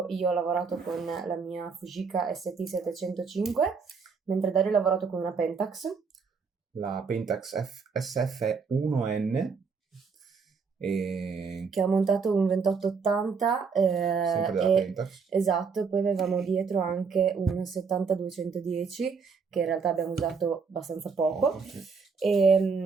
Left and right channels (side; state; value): left; quieter; 5.3 dB